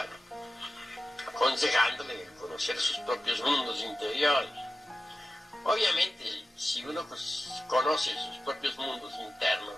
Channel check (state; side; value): normal; both; correlation 0.94